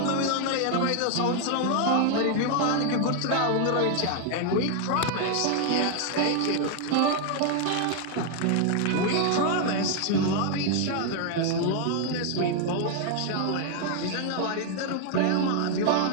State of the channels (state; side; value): different; both; correlation 0.00